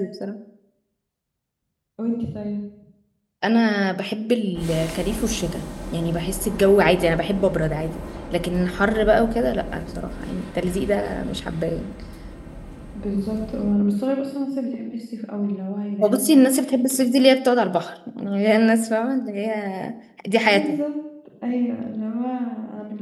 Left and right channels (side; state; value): both; identical; correlation 1.00